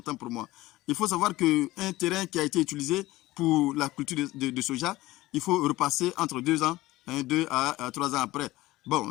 pour moi. Il faut savoir qu'un terrain qui a été utilisé pour la culture de soja, il faut repasser entre 2 ans, 2 à 3 ans après.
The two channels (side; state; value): right; quieter; 18.1 dB